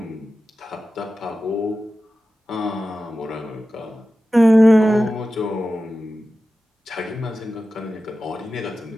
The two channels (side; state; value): both; normal; correlation 0.94